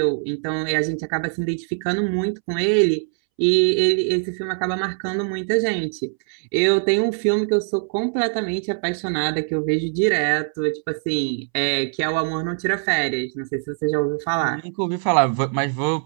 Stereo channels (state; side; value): silent; left; 64 dB below the other